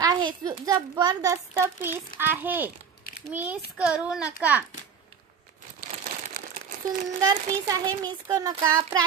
आहे। जबरदस्त पीस आहे, मिस करू नका। सुंदर पीस आहे, मिस करू नका।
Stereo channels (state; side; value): quieter; left; 6.9 dB